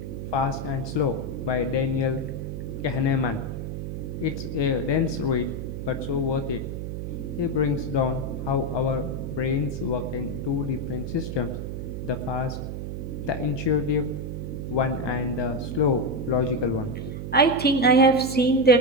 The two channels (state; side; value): noise; right; hum, 5 dB below the sound